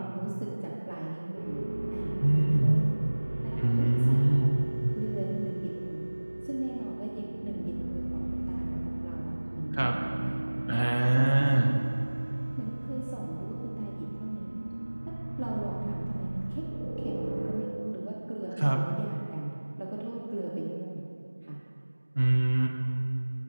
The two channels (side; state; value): both; inverted; correlation -1.00